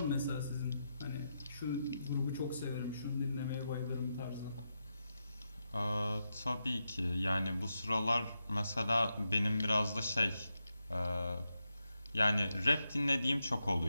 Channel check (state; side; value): inverted; both; correlation -0.86